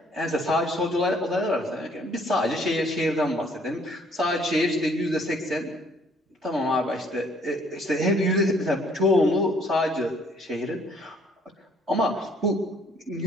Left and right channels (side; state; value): both; normal; correlation 0.62